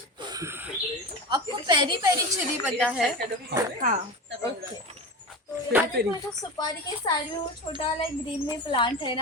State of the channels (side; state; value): both; normal; correlation 0.26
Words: आपको पेरी पेरी चिली पता है? हाँ ओके तो यहाँ देखो जो सुपारी के साइड में वो छोटा वाला ग्रीन में प्लांट है